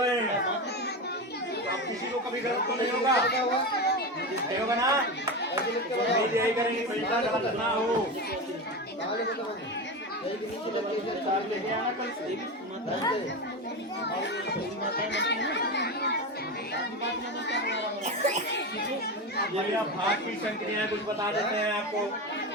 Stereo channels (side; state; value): both; normal; correlation 0.20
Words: हैं। अब किसी को कभी गलत तो नहीं होगा, नहीं होगा ना? नहीं यही करेंगे, पैसा गलत ना हो। लेके आना कल से। भैया भाग की संक्रियाएं कुछ बता देते हैं आपको।